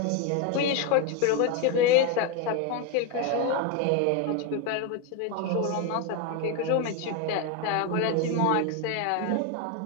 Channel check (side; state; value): both; different; correlation 0.02